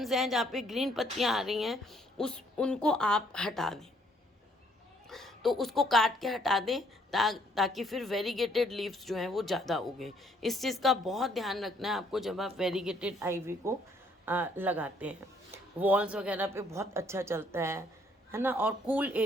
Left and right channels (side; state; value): both; normal; correlation 0.66